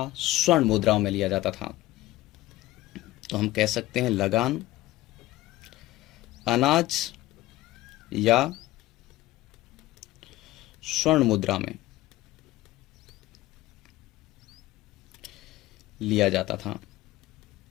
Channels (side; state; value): right; quieter; 17.0 dB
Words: स्वर्ण मुद्राओं में लिया जाता था। तो हम कह सकते हैं लगान अनाज या स्वर्ण मुद्रा में लिया जाता था।